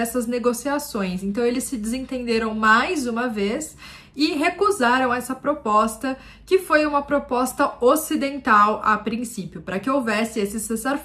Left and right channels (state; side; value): identical; both; correlation 1.00